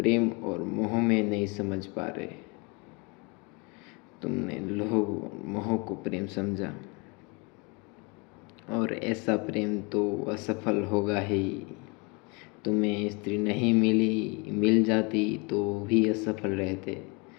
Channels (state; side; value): quieter; right; 30.1 dB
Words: और मोह में नहीं समझ पा रहे। तुमने लोभ और मोह को प्रेम समझा, और ऐसा प्रेम तो असफल होगा ही। तुम्हें स्त्री नहीं मिली, मिल जाती तो भी असफल रहते।